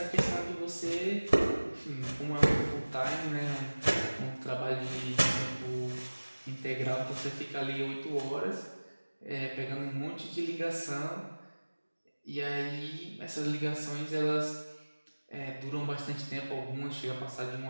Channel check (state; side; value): inverted; both; correlation -1.00